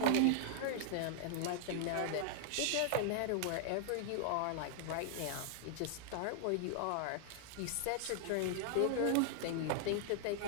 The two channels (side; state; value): both; different; correlation 0.00